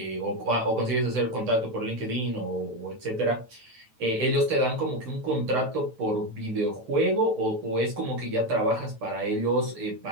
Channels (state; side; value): late; left; 9.1 ms